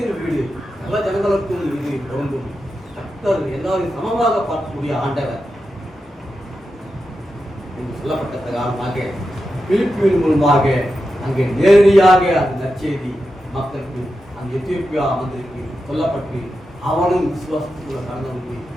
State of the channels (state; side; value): normal; both; correlation 0.89